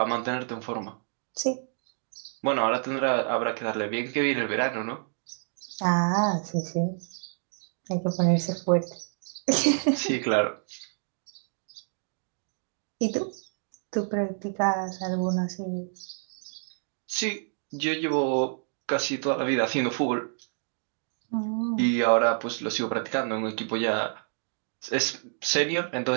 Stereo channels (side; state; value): left; silent; digital silence